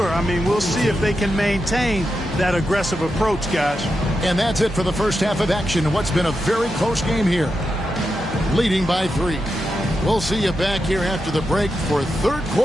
I mean, we'll see if they can maintain that aggressive approach, guys. And that's it for the first half of action in what's been a very close game here. Leading by 3. We'll see you back here after the break for third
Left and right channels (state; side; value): normal; both; correlation 0.87